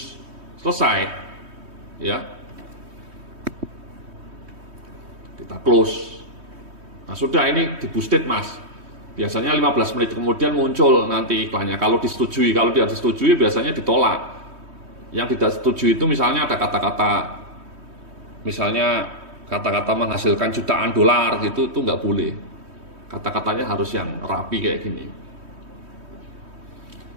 selesai, ya, kita close. Nah, sudah, ini di-boosted Mas. Biasanya 15 menit kemudian muncul nanti iklannya. Kalau disetujui, kalau tidak disetujui biasanya ditolak. Yang tidak setuju itu misalnya ada kata-kata, misalnya kata-kata menghasilkan jutaan dolar gitu, itu nggak boleh. Kata-katanya harus yang rapi kayak gini.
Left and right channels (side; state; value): left; late; 3.2 ms